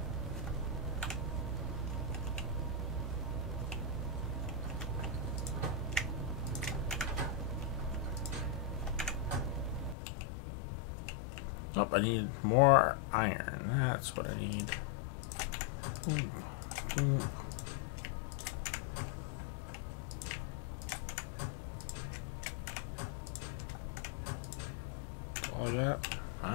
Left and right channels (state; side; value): drops out; right; at 10.0 s